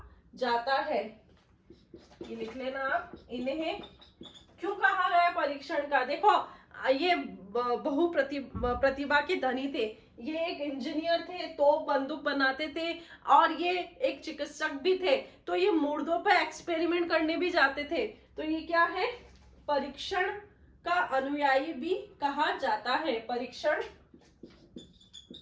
जाता है। ये लिख लेना आप, इन्हें क्यों कहा गया परीक्षण का। देखो ये प्रतिभा के धनी थे, ये एक इंजीनियर थे, तोप बंदूक बनाते थे, और ये एक चिकित्सक भी थे। तो ये मुर्दों पर एक्सपेरिमेंट करने भी जाते थे। तो ये क्या है? परीक्षण का अनुयायी भी कहा जाता है। परीक्षण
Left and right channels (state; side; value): identical; both; correlation 1.00